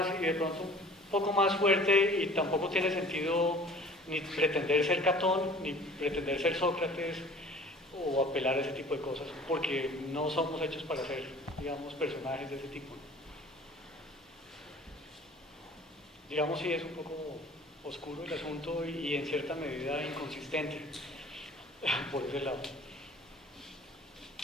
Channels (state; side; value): normal; both; correlation 0.47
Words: y de pronto un poco más fuerte, y tampoco tiene sentido ni pretender ser Catón, ni pretender ser Sócrates o apelar a ese tipo de cosas, porque no somos hechos para ser, digamos, personajes de ese tipo. Digamos, sí es un poco oscuro el asunto y en cierta medida inconsistente por ese lado.